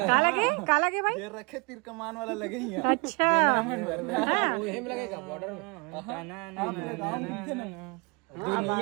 का लगे भाई जेहर रखे तीर कमान वाला लगे ही अच्छा हेम लगेगा बॉर्डर में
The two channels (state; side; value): quieter; left; 30.5 dB